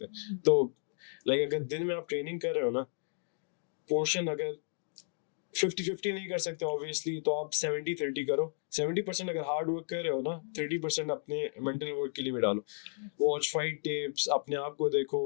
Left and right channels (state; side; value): silent; right; digital silence